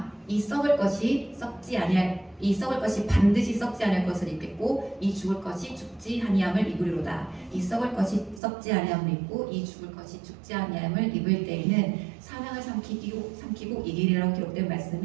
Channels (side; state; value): left; drops out; at 8.4 s